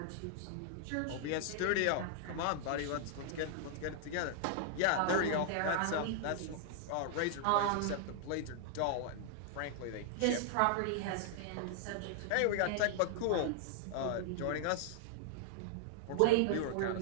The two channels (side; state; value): both; different; correlation 0.00